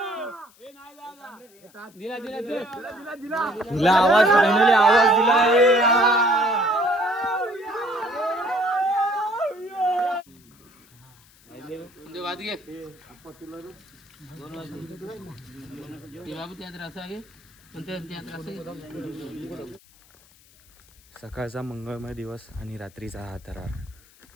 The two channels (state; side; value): noise; left; hiss, 28 dB below the sound